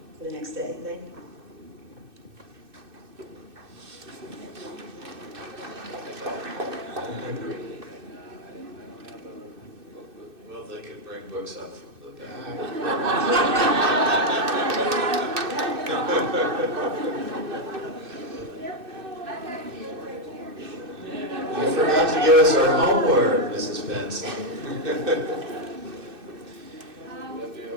the next day. Thank you. Well, they could bring books up from the back. You forgot to give us our homework, Mrs. Benson.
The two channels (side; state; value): left; late; 2.6 ms